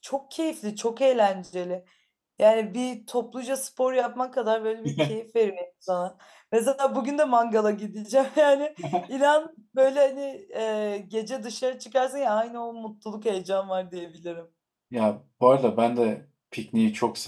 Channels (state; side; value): identical; both; correlation 1.00